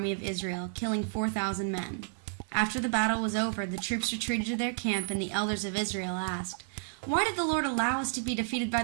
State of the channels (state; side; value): silent; left; 57 dB below the other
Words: of Israel, killing 4,000 men. After the battle was over, the troops retreated to their camp, and the elders of Israel asked, "Why did the Lord allow us to be defeated by